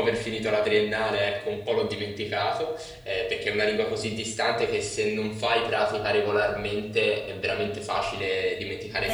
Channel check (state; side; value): identical; both; correlation 1.00